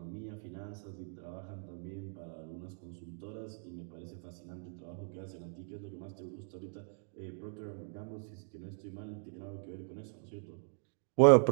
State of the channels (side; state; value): left; silent; 52 dB below the other